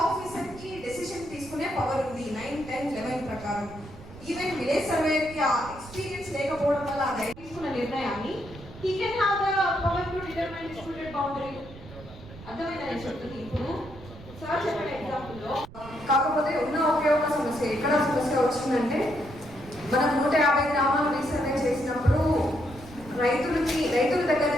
డెసిషన్ తీసుకునే పవర్ ఉంది 9, 10, 11 ప్రకారం. ఈవెన్ విలేజ్ సర్వేకి ఆ ఎక్స్పీరియన్స్ లేకపోవడం వల్ల ఆ రైతు తీసుకున్న నిర్ణయాన్ని he can have the power to determine disputed boundary. అర్థమైందని చెప్తుంది. ఇప్పుడు సార్ చెప్పిన ఎగ్జాంపుల్లో కాకపోతే ఉన్న ఒకే ఒక సమస్య ఎక్కడ సమస్య వచ్చిందంటే మనం 150 గ్రామాలు రీసర్వే చేసినప్పుడు రైతుల దగ్గర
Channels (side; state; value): right; noise; rumble, 17 dB below the sound